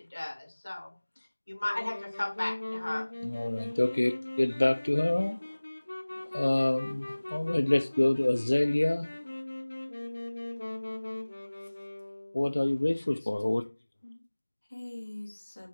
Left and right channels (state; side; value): inverted; both; correlation -1.00